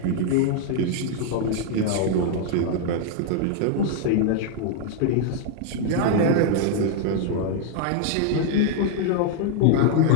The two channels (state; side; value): different; both; correlation 0.00